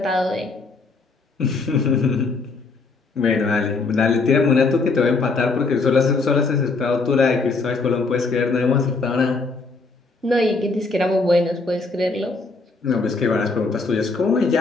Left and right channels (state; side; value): quieter; right; 3.9 dB